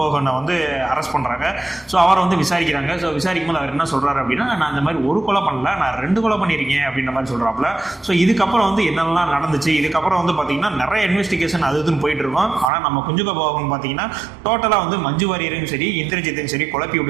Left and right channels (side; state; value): left; drops out; at 12.7 s